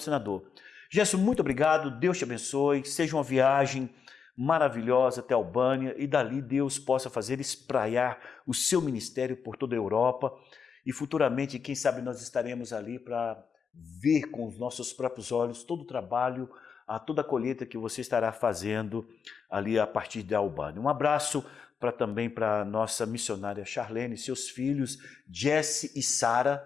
Gerson, muito obrigado, Deus te abençoe, seja uma viagem maravilhosa até a Albânia e dali Deus possa fazer espraiar o seu ministério por toda a Europa e futuramente, quem sabe, nós estaremos ali para ver com os nossos próprios olhos todo o trabalho, toda a colheita que você estará fazendo ali a partir da Albânia. Um abraço também para a nossa missionária Charlene, seus filhos Jesse e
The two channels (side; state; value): right; quieter; 6.2 dB